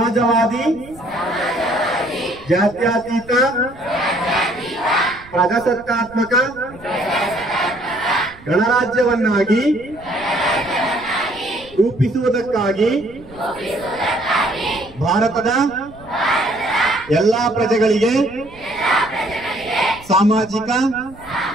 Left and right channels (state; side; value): noise; right; rumble, 22 dB below the sound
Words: ಜಾತ್ಯತೀತ, ಪ್ರಜಾಸತ್ತಾತ್ಮಕ ಗಣರಾಜ್ಯವನ್ನಾಗಿ ರೂಪಿಸುವುದಕ್ಕಾಗಿ ಭಾರತದ ಎಲ್ಲಾ ಪ್ರಜೆಗಳಿಗೆ ಸಾಮಾಜಿಕ,